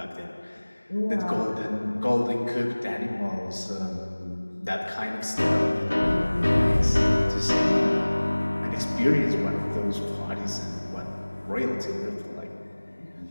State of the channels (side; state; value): both; inverted; correlation -1.00